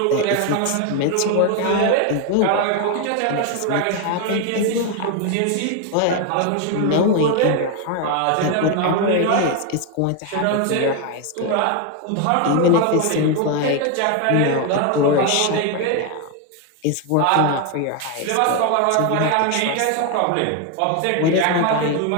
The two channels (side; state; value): both; different; correlation 0.01